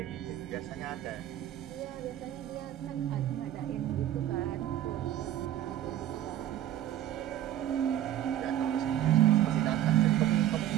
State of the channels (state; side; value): quieter; left; 11.9 dB